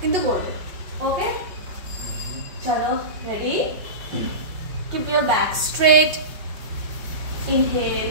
কিন্তু করবে। ওকে? চলো, ready? Keep your back straight.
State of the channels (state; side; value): late; left; 5.6 ms